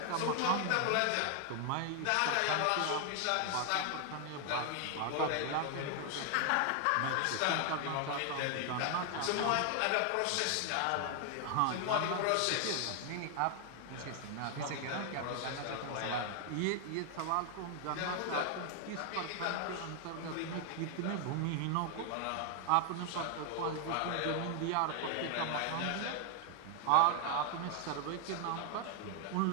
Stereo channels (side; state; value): both; different; correlation 0.00